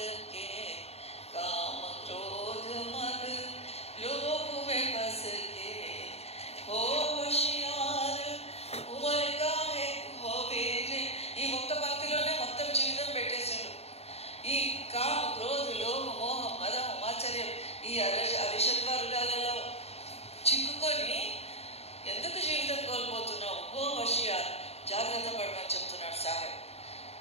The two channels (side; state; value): right; late; 0.30 ms